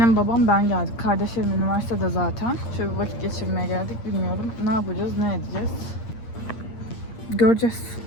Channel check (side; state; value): right; late; 8.6 ms